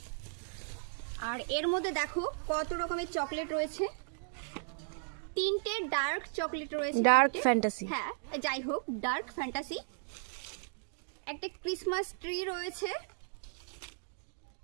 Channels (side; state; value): left; silent; digital silence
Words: আর এর মধ্যে দেখো কত রকমের চকলেট রয়েছে, 3টে ডার্ক চকলেট রয়েছে, ডার্ক ফ্যান্টাসি। হ্যাঁ যাই হোক, ডার্ক ফ্যান্টাসি। একটা ক্রিসমাস ট্রি রয়েছে,